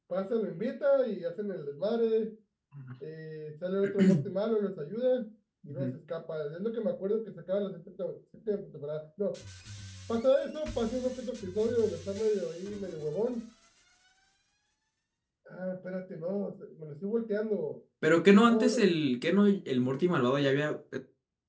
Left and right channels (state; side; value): identical; both; correlation 1.00